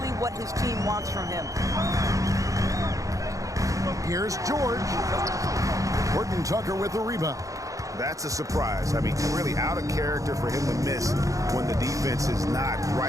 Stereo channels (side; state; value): left; late; 0.16 ms